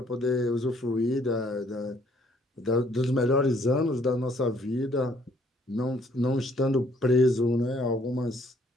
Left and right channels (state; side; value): normal; both; correlation 0.64